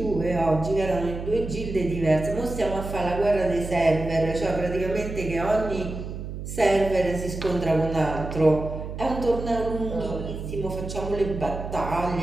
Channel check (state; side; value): noise; right; hum, 8 dB below the sound